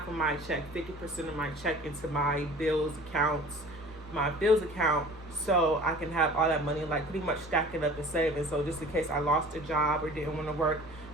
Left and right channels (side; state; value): both; normal; correlation 0.44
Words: of my check, 50% of my check into my bills account, so I can have all that money, like pretty much stack it up and save it. So just in case I lost a job or didn't want to work